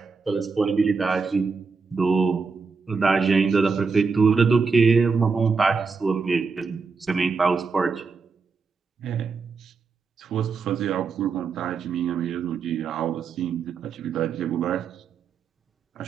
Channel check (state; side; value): quieter; left; 4.9 dB